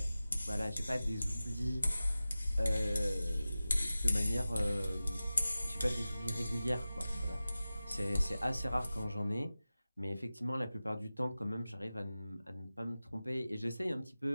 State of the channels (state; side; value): inverted; both; correlation -0.95